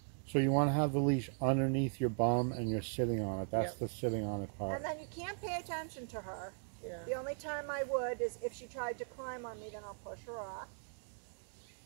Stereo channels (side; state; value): left; silent; digital silence